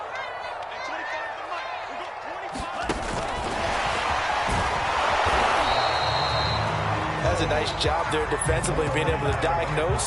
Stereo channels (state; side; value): identical; both; correlation 1.00